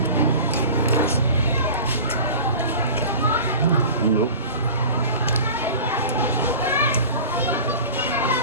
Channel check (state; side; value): inverted; both; correlation -0.37